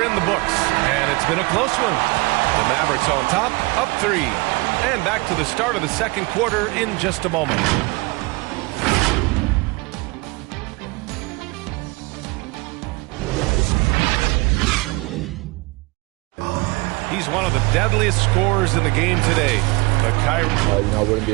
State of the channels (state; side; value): quieter; left; 26.2 dB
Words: in the books, and it's been a close one. The Mavericks on top, up 3. And back to the start of the second quarter in just a moment. He's one of the deadliest scorers in the game today. But Kyrie... I wouldn't